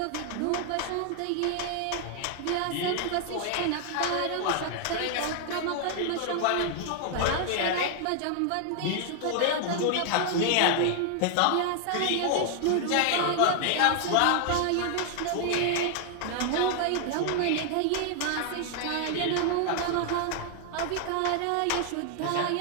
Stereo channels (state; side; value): different; both; correlation 0.00